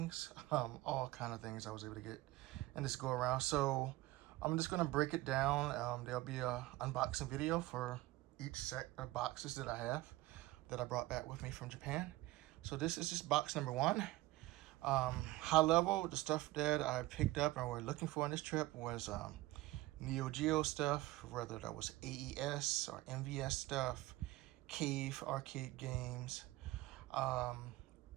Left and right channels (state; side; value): quieter; left; 18.3 dB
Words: all kind of things I was able to get in this go around. So, I'm just going to break it down. There'll be a unboxing video for each set of boxes that I have that I brought back with me from Japan. So this is just box number one. High level, the stuff that I picked up and we're looking for on this trip was Neo Geo stuff, whether that was AES or MVS stuff, cave arcade games, um,